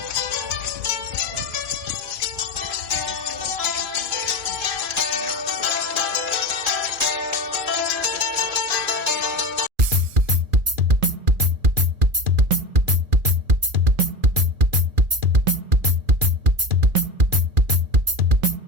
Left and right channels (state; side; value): late; left; 2.4 ms